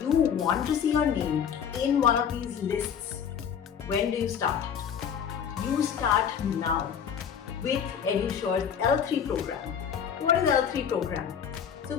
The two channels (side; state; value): right; quieter; 7.9 dB